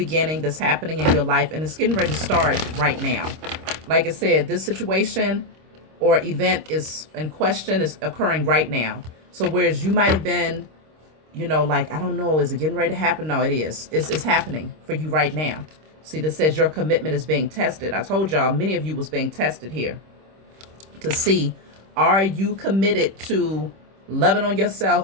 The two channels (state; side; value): late; left; 26 ms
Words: that's happening in your life, and it's getting ready to start right now. Like I said, this situation or event is in question is occurring right now. So whereas you might have been, like, I don't know, is it getting ready to happen? No, it is. It's happening for you right now. See, this says your commitment is being tested. I told y'all, many of you was being tested here to see, are you committed to loving on